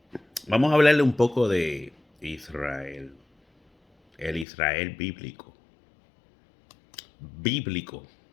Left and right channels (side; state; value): right; drops out; at 4.5 s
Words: vamos a hablarle un poco de Israel. El Israel bíblico. Bíblico.